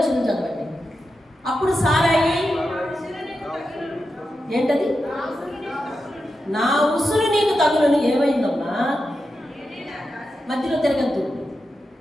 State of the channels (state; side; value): normal; both; correlation 0.89